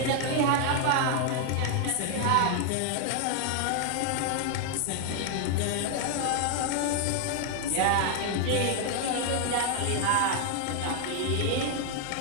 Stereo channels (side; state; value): both; different; correlation 0.00